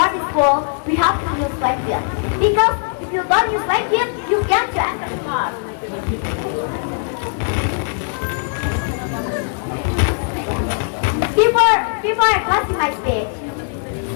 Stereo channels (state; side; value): silent; right; 58 dB below the other